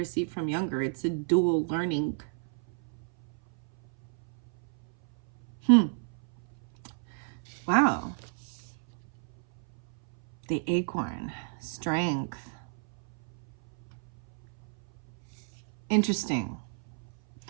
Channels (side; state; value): left; silent; 57 dB below the other